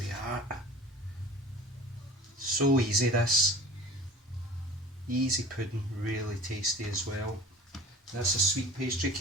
are. So easy this. Easy pudding, really tasty as well. That's a sweet pastry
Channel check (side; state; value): both; normal; correlation 0.41